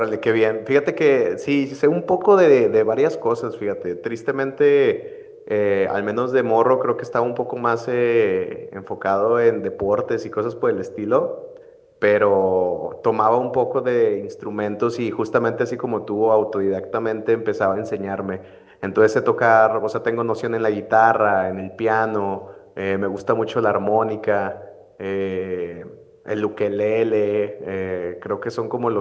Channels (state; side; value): identical; both; correlation 1.00